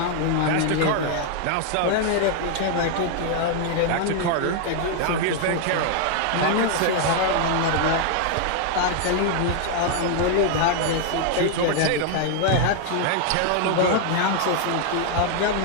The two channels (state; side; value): different; both; correlation 0.00